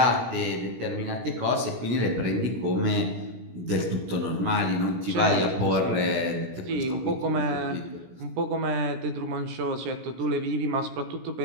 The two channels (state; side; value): late; left; 17 ms